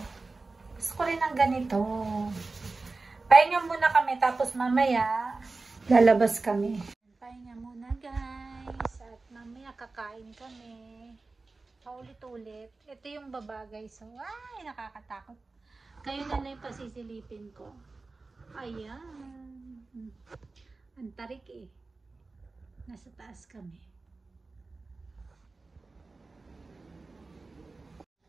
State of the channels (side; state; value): left; quieter; 3.7 dB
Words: Gusto ko rin ng ganito. Pahinga muna kami tapos mamaya lalabas kami. Pahinga muna guys. At mamaya kakain kami. Paulit-ulit. Ito yung baba guys. So, ay nakakatakot. Kayo na lang yung pasisilipin ko. Ayan. Ang tarik eh. Nasa taas kami.